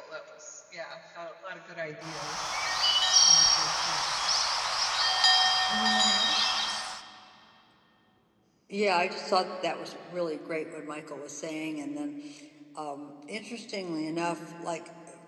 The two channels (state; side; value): identical; both; correlation 1.00